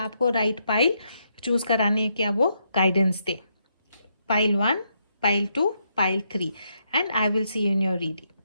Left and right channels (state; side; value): inverted; both; correlation -0.78